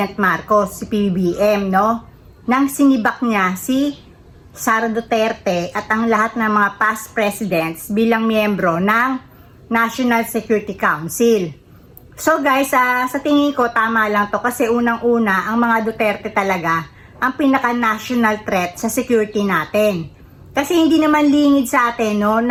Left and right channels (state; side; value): identical; both; correlation 1.00